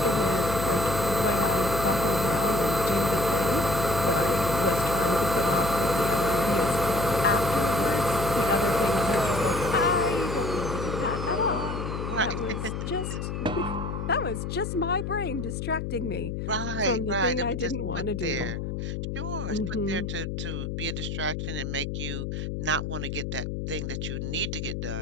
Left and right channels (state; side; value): noise; left; hum, 4 dB below the sound